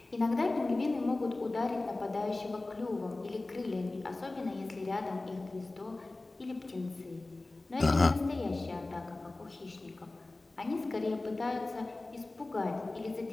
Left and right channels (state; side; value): quieter; right; 3.0 dB